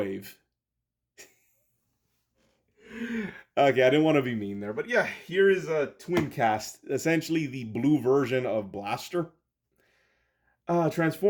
Okay, I didn't want to be mean there, but yeah, here is a Twincast, essentially the blue version of Blaster.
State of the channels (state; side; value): identical; both; correlation 1.00